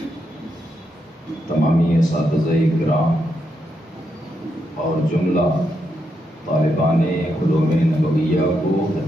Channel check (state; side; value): normal; both; correlation 0.82